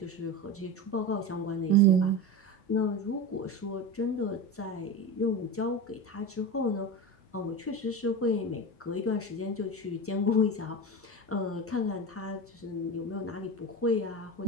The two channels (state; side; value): normal; both; correlation 0.24